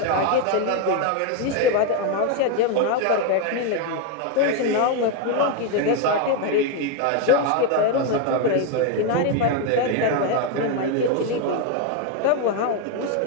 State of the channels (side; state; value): both; different; correlation 0.01